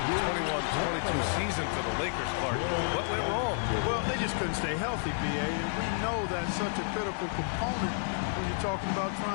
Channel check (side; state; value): right; silent; 57 dB below the other